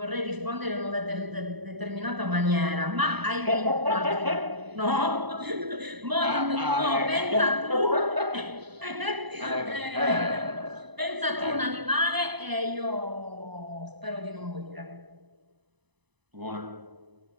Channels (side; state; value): left; late; 1.0 ms